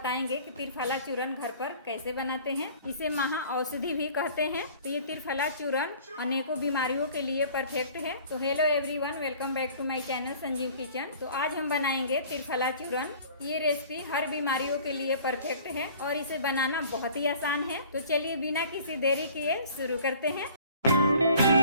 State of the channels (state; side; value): inverted; both; correlation -0.49